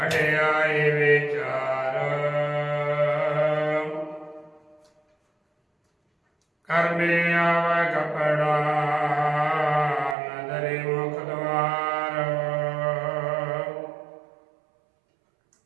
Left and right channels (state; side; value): drops out; left; at 10.2 s